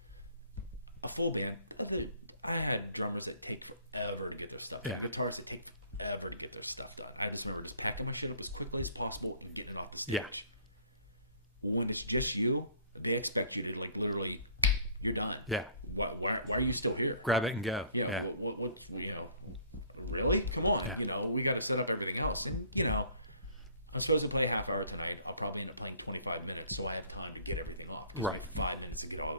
a full band, I had drummers that take forever to get their stuff done. And guitarists that take forever to get their stuff done. I just remember just packing my shit up as quickly as possible and getting it off the stage. When it's just you, they expect you to literally, you're done. Yeah. Why are you still here? Grab it and go. Yeah. What's really? Come on. We got to set up everything else. And I'm supposed to play a half hour tonight. I'll probably end up playing 25 minutes, so I have time to get everything off. It gives me 5 minutes to get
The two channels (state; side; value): inverted; both; correlation -0.54